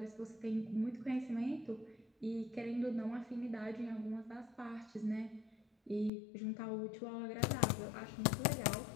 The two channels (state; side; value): drops out; right; at 6.1 s